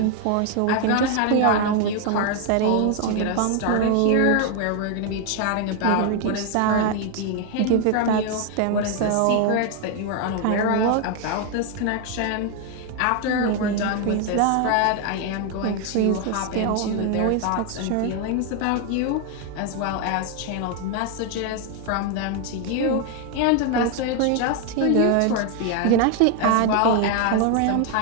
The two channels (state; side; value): different; both; correlation 0.01